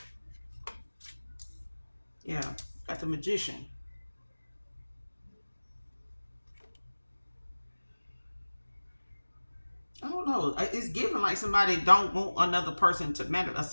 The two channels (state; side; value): inverted; both; correlation -1.00